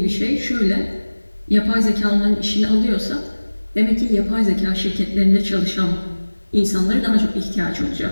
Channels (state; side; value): inverted; both; correlation -1.00